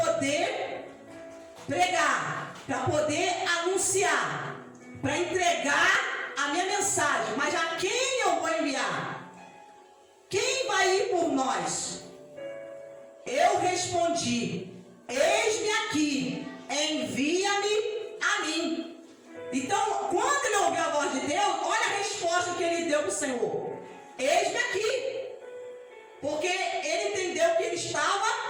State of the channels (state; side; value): identical; both; correlation 1.00